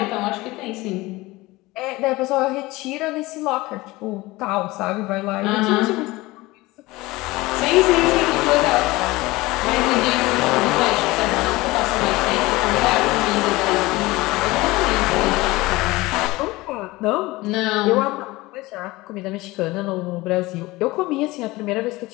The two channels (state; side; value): quieter; right; 20.5 dB